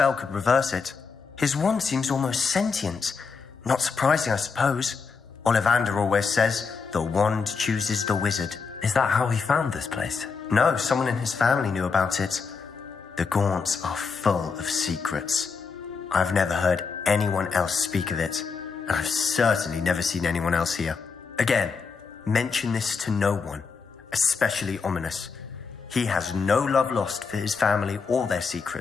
could reverse it. His wand seems almost sentient. Not surprising, I suppose. Ollivander always says, the wand chooses the wizard. Is that how he found this place? No, someone in his family knew about it. The Gaunts are full of secrets. I've never heard anyone else speak of it, and I've certainly never seen anyone else here. Again, mention this to no one, especially Ominous. He has no love lost for his family or their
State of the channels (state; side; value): quieter; right; 5.2 dB